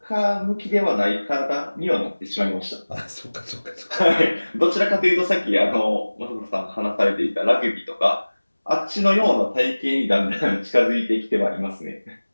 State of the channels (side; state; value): both; inverted; correlation -1.00